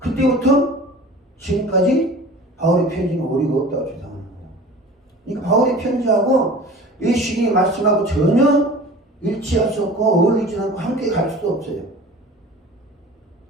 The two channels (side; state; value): both; normal; correlation 0.41